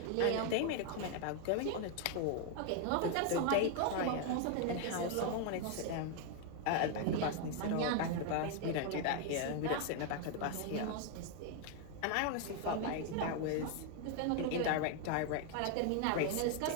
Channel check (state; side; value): different; both; correlation 0.00